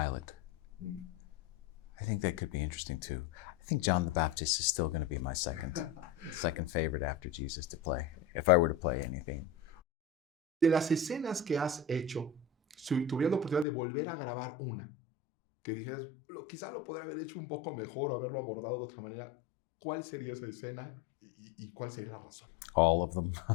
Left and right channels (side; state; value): right; drops out; at 13.7 s